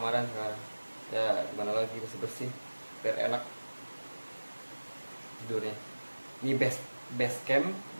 sekarang. Ya gimana lagi, bersih-bersih biar enak tidurnya. Ini best camp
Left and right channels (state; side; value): inverted; both; correlation -1.00